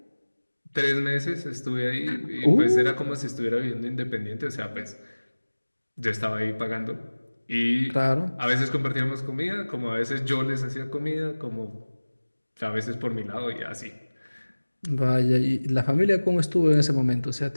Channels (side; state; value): both; inverted; correlation -1.00